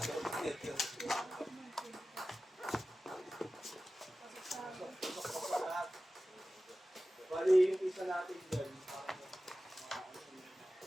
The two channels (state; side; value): normal; both; correlation 0.95